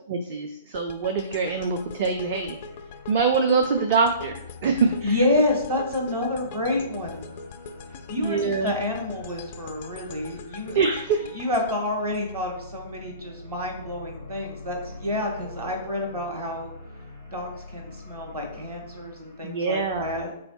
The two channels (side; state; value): both; inverted; correlation -0.41